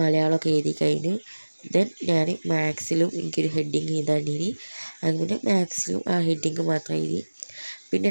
എഴുതി കഴിഞ്ഞു. ദെൻ ഞാൻ മാത്സിലും എനിക്കൊരു ഹെഡിങ് എഴുതാണ്ടിനി. അങ്ങനെ മാത്സിലും ആ ഹെഡിങ് മാത്രം എഴുതി. പിന്നെ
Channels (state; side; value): inverted; both; correlation -1.00